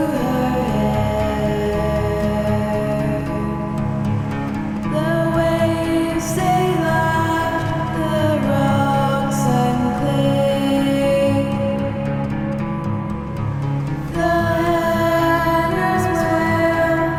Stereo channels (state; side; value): identical; both; correlation 1.00